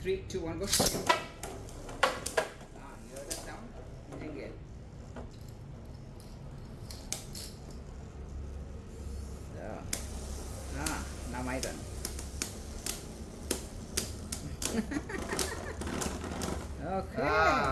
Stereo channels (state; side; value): identical; both; correlation 1.00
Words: 2, 1, go. Ah, you heard that sound? You didn't get. So. Ah, now my turn. Okay,